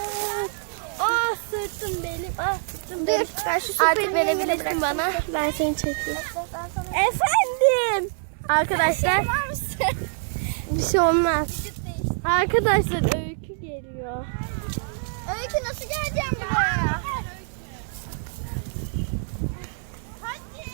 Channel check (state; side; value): silent; left; 62 dB below the other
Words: Sırtım benim. Sırtım benim. Ben şu Artık verebilirsin bana. Ben seni çekeyim. Efendim. Arkadaşlar. Bir şey olmaz. Arkadaşlar Öykü geliyor. Öykü nasıl geleceğim buraya?